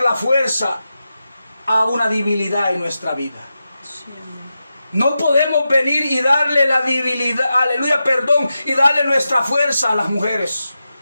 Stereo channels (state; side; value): inverted; both; correlation -0.90